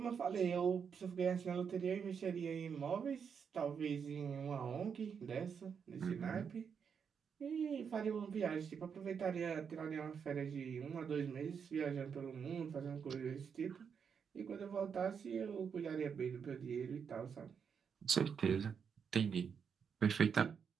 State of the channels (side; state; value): left; quieter; 6.8 dB